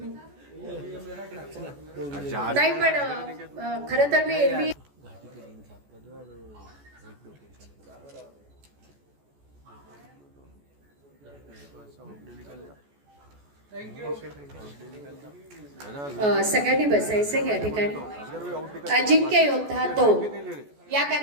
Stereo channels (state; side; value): late; left; 14 ms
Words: नाही पण खरं तर मी एरवी सगळ्यांनी बसायचं या ठिकाणी. अजिंक्य योद्धा 2 या